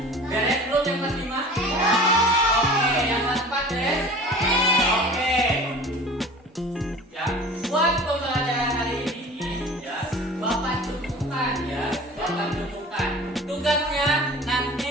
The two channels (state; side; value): normal; both; correlation 0.41